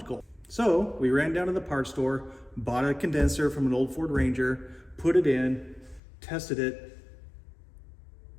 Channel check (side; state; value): right; drops out; at 6.0 s